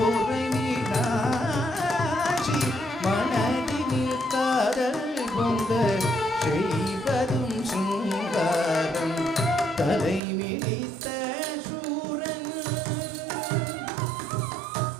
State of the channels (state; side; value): drops out; left; at 10.2 s